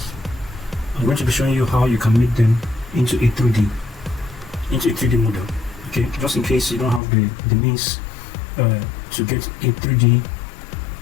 I'm going to be showing you how you can make them into a 3D model. Okay, just in case you don't have the means to get a 3D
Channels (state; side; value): drops out; right; at 7.0 s